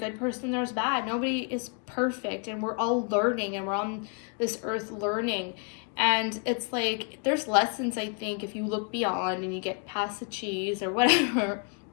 person, there's bad. Nobody is perfect, and we're all learning, and we're on this earth learning. And it's like, there's lessons, I think, if you look beyond and you get past the cheese or whatever.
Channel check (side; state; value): right; quieter; 37.8 dB